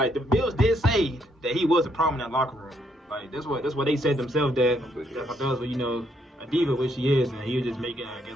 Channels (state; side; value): normal; both; correlation 0.73